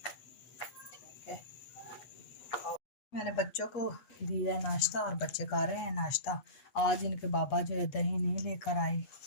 ठीक है। और मैंने बच्चों को दिया है नाश्ता, और बच्चे कर रहे हैं नाश्ता। आज इनके बाबा जो है दही नहीं लेकर आए,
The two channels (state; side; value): late; right; 8.3 ms